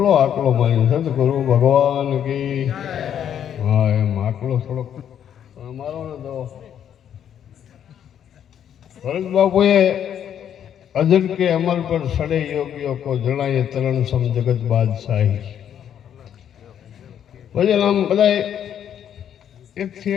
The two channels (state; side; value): quieter; right; 9.4 dB